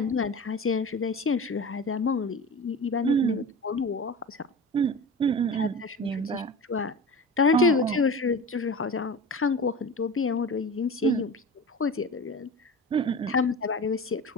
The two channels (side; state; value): both; normal; correlation 0.32